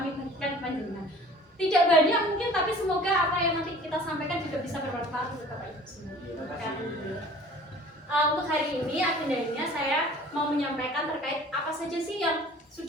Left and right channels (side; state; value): both; normal; correlation 0.47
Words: bagikan ke panjenengan. Tidak banyak mungkin, tapi semoga apa yang nanti kita sampaikan juga bisa bermanfaat untuk Bapak Ibu semua. Untuk hari ini agendanya saya mau menyampaikan terkait apa saja sih yang